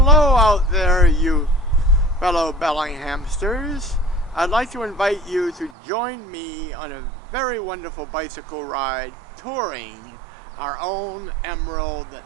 out there, you fellow Bellinghamsters. I'd like to invite you to join me on a very wonderful bicycle ride touring our own emerald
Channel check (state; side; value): drops out; left; at 5.7 s